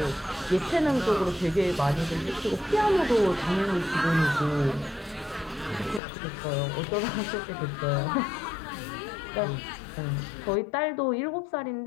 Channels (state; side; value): drops out; right; at 6.0 s